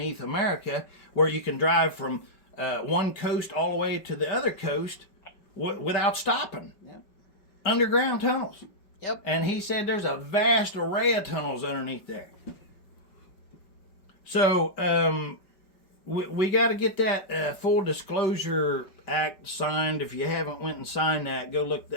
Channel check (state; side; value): late; right; 5.2 ms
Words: America, where you can drive from one coast all the way to the other coast without stopping. Yep. Underground tunnels. Yep. And he said there's a vast array of tunnels underneath there. So we got to get that Full Disclosure Act signed. If you haven't went and signed that, go look